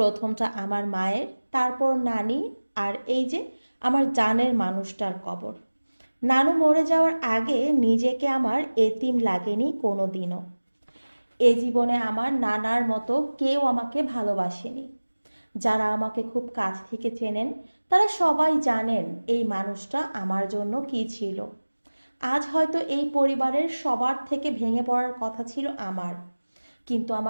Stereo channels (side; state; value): both; inverted; correlation -1.00